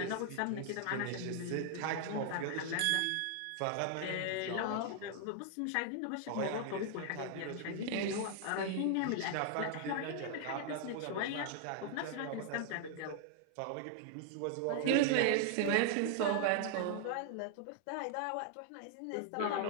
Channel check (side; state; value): both; different; correlation 0.00